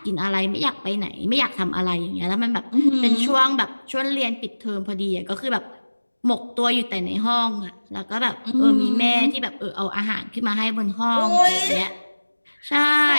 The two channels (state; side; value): inverted; both; correlation -1.00